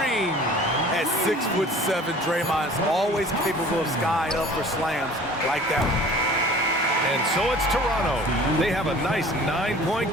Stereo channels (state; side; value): normal; both; correlation 0.46